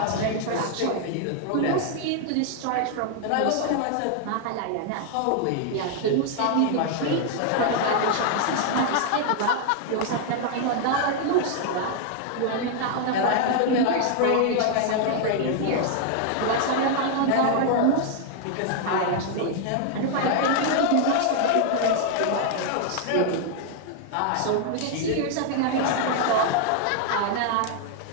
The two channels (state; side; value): different; both; correlation 0.00